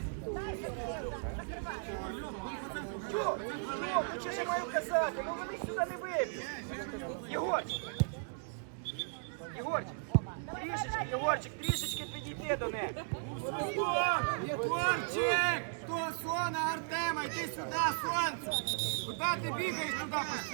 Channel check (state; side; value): silent; left; digital silence